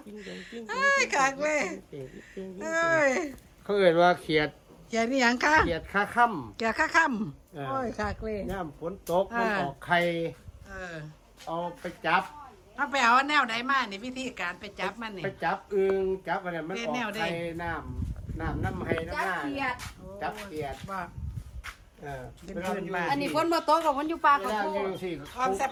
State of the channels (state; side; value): identical; both; correlation 1.00